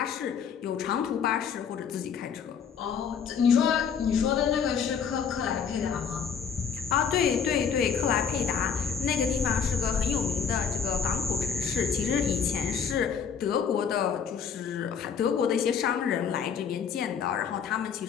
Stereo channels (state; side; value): quieter; right; 7.0 dB